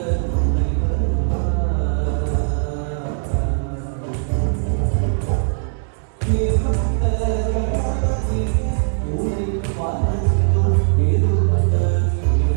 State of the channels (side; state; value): left; silent; 66 dB below the other